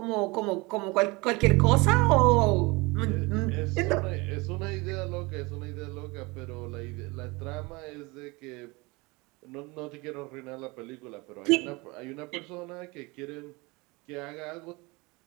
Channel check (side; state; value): left; quieter; 25.2 dB